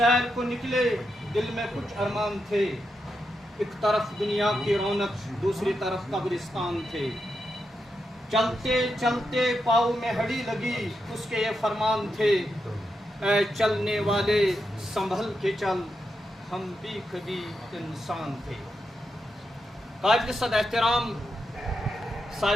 کو نکلے، دل میں کچھ ارمان تھے، ایک طرف دنیا کی رونق دوسری طرف قبرستان تھے. چلتے چلتے پاؤں میں ہڈی لگی، اس کے یہ فرمان تھے، اے چلنے والے سنبھل کے چل، ہم بھی کبھی انسان تھے. قابل صد احترام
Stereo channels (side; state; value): both; normal; correlation 0.85